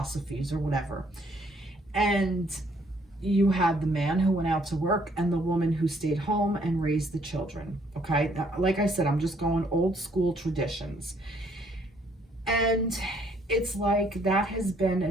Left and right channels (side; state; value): both; normal; correlation 0.65